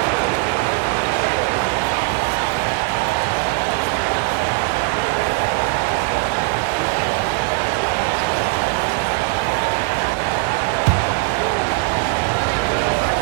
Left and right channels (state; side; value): quieter; left; 26.1 dB